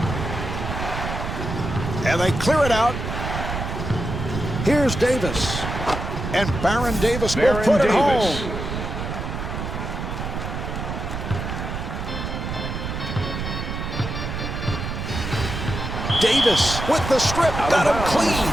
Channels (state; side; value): noise; right; rumble, 5 dB below the sound